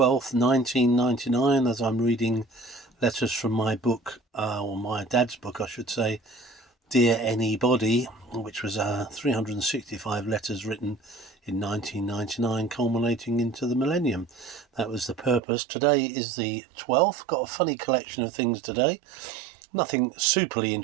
1999, as I'm reading letters from my book, or my dad's book, I should say, Dear Anybody, which was 365 letters written in 1999, culminating into the millennium. That was the purpose. Today is the 12th. Got a funny collection of things today. Nothing superly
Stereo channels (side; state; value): left; drops out; at 15.4 s